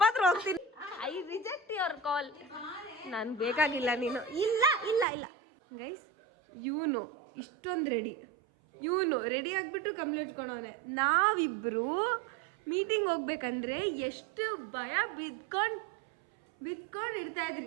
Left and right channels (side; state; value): left; drops out; at 5.1 s